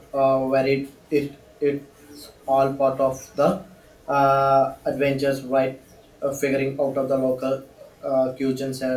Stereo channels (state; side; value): identical; both; correlation 1.00